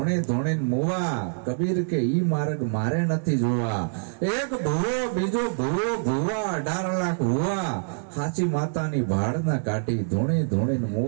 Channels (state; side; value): silent; left; digital silence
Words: ધોણે મુવા. કબીર કે ઈ માર્ગ મારે નથી જોવા. એક ભૂવો બીજો ભૂવો ભૂવા, 18 લાખ હુવા, હાચી માતાની ભાડ ના કાઢી, ધોણે ધોણે